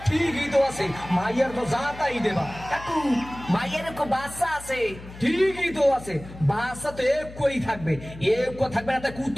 ঠিকই তো আছে মাইয়ার তো জাতাই দেবা কাকু মাইয়ারে কো বাচ্চা আছে ঠিকই তো আছে বাচ্চা তো এক কই থাকবে এক কো থাকবে না তাই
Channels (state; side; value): noise; left; hum, 16 dB below the sound